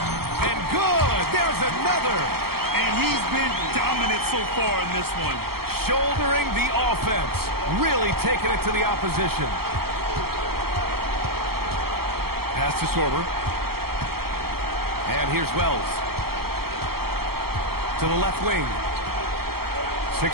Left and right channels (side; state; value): left; late; 0.95 ms